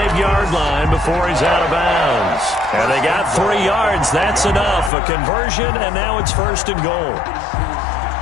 line before he's out of bounds. And they got 3 yards. That's enough. A conversion, and now it's 1st and goal.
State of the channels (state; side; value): drops out; right; at 4.9 s